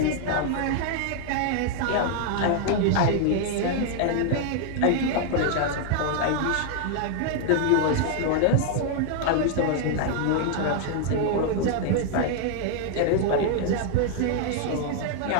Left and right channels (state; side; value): different; both; correlation 0.00